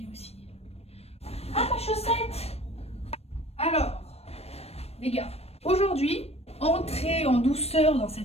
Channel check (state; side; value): late; right; 0.30 ms